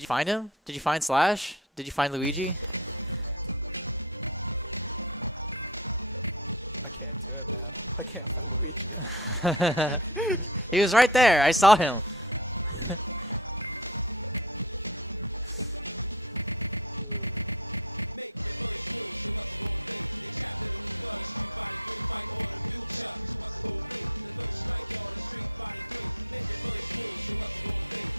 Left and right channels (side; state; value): both; normal; correlation 0.26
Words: find him? Did you find Slash? Did you find Luigi? I can't do it, man. I can't find Luigi. He was right there. I saw him.